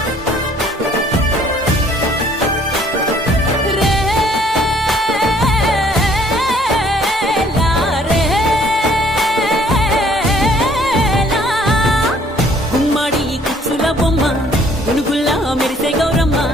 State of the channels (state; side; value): normal; both; correlation 0.60